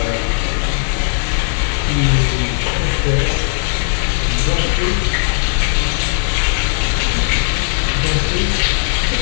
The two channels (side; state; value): right; silent; 59 dB below the other